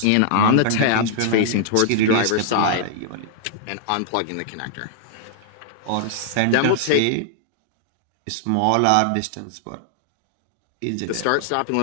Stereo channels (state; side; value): different; both; correlation -0.01